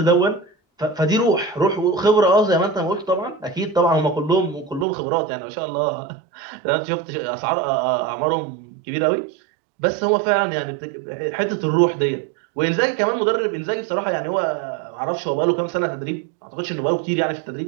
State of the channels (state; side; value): drops out; left; at 4.9 s